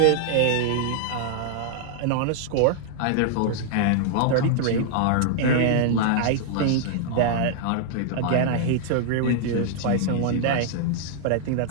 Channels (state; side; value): different; both; correlation -0.01